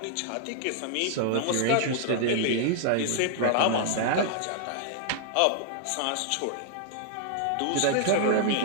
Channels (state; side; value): different; both; correlation -0.01